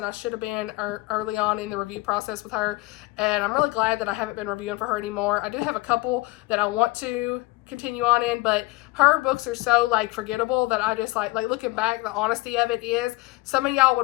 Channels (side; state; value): right; quieter; 21.3 dB